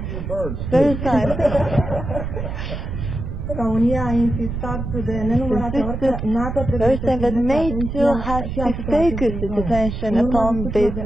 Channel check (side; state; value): right; noise; rumble, 5 dB below the sound